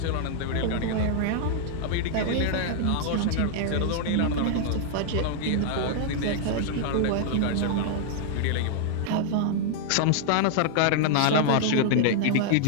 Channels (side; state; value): both; different; correlation -0.01